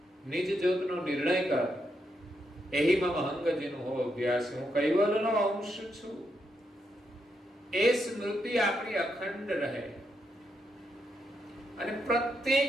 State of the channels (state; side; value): normal; both; correlation 0.81